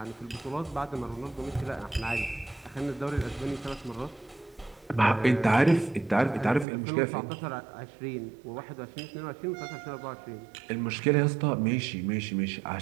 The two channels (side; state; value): left; drops out; at 6.7 s